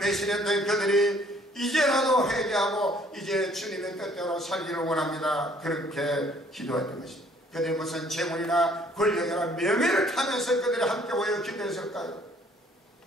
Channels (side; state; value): both; normal; correlation 0.60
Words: 그들이 이제라도 회개하고 이제 주님의 뜻대로 살기를 원합니다. 그렇게 기도했던 것입니다. 그들이 무슨 재물이나 권력이나 명예를 타면서 그들이 함께 모여 기도했을까요?